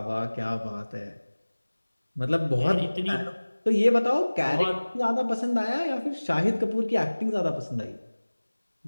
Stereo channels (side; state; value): both; inverted; correlation -1.00